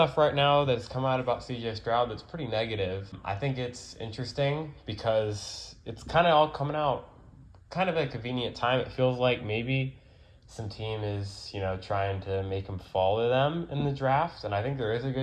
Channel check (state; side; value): identical; both; correlation 1.00